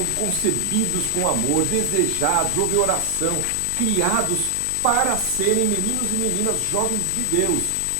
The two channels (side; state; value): both; different; correlation 0.00